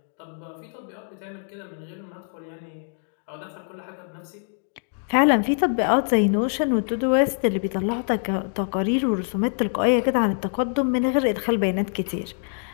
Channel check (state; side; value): silent; right; 61 dB below the other